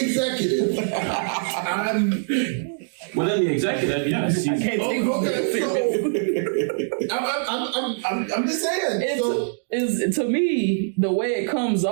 executive, Within the executive, yes. I'm just saying. So, is to me the way it comes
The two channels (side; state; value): left; silent; digital silence